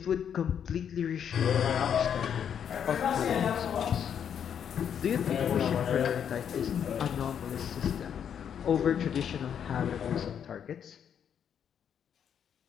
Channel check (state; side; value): quieter; right; 8.4 dB